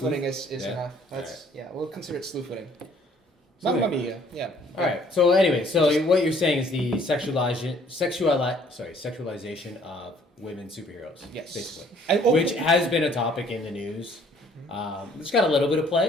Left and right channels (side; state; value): both; normal; correlation 0.59